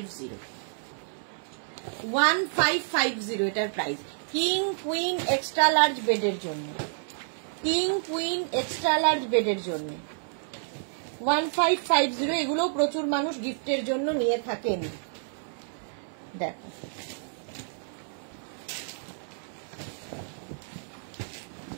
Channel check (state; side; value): silent; left; 58 dB below the other